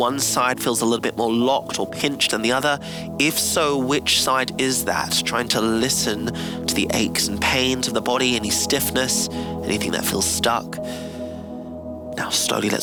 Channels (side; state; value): both; identical; correlation 1.00